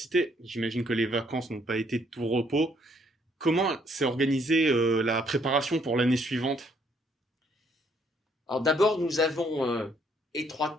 j'imagine que les vacances n'ont pas été de tout repos. Comment s'est organisée la préparation pour l'année suivante? Alors d'abord, nous avons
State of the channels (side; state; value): both; normal; correlation 0.68